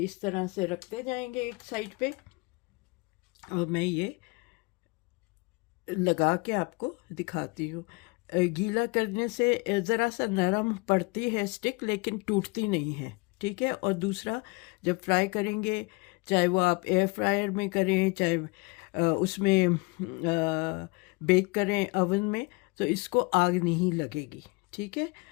तरह से रखते जाएंगे एक साइड पे, और मैं ये लगा के आपको दिखाती हूँ। गीला करने से ज़रा सा नरम पड़ती है स्टिक, लेकिन टूटती नहीं है। ठीक है, और दूसरा, जब फ्राई करेंगे, चाहे वो आप एयर फ्रायर में करें, चाहे उसमें बेक करें ओवन में, तो इसको आग नहीं लगेगी। ठीक है,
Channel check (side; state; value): right; quieter; 27.6 dB